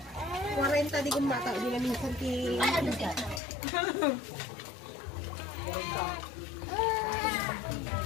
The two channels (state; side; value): drops out; right; at 3.4 s